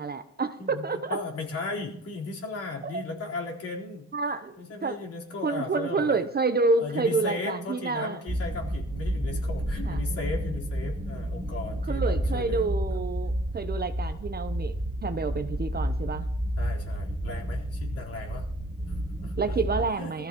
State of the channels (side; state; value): both; normal; correlation 0.48